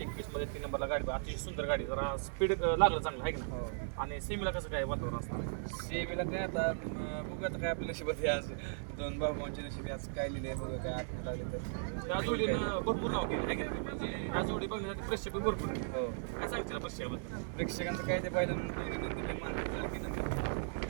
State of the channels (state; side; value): silent; left; digital silence